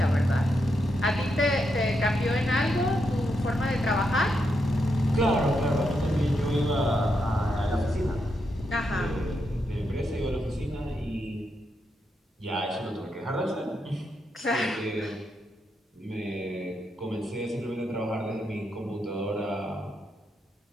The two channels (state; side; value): normal; both; correlation 0.82